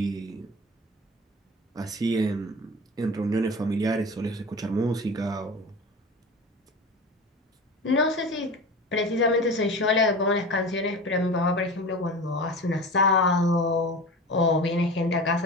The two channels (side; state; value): both; normal; correlation 0.32